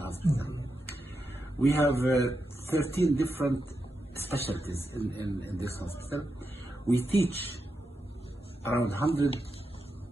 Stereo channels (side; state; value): both; normal; correlation 0.87